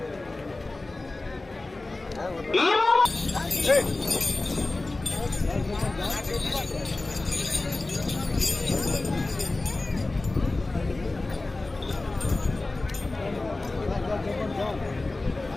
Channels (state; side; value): quieter; right; 3.1 dB